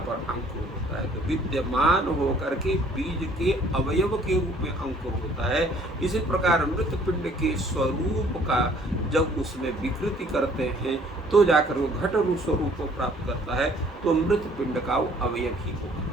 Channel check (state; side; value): normal; both; correlation 0.57